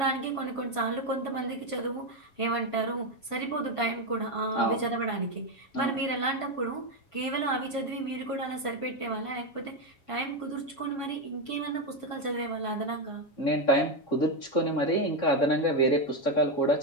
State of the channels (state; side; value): late; right; 7.2 ms